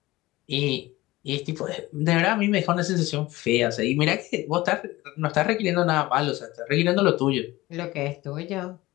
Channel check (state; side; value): quieter; right; 18.8 dB